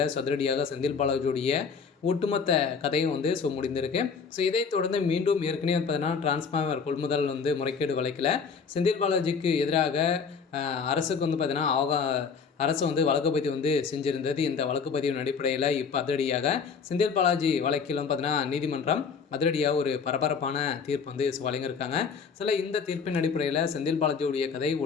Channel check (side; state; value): right; quieter; 5.8 dB